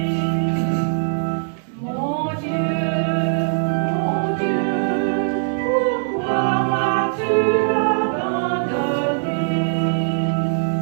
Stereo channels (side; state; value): left; silent; digital silence